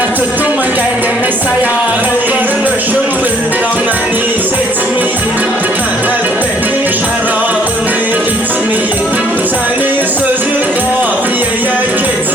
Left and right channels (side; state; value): both; normal; correlation 0.63